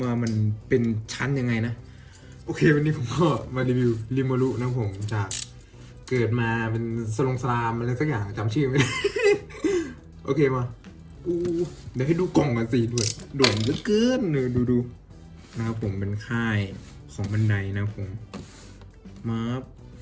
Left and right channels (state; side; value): identical; both; correlation 1.00